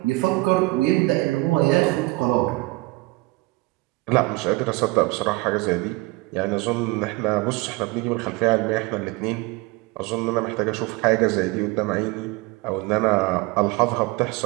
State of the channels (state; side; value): quieter; left; 23.0 dB